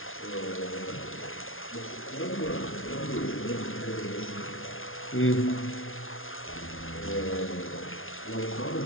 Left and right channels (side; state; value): right; late; 0.59 ms